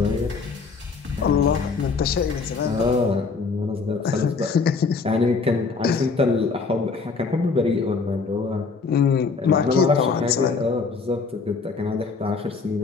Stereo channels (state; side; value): quieter; right; 4.6 dB